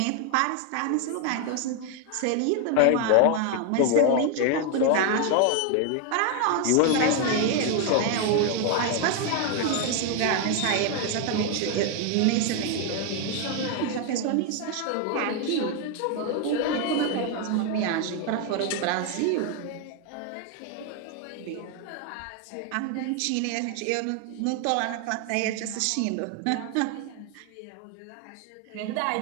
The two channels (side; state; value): both; different; correlation 0.01